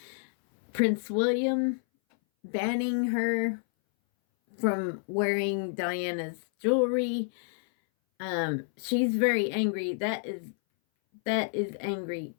Prince William banning her from wearing Diana's jewelry. She's very angry. That is angry.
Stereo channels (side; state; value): right; silent; 58 dB below the other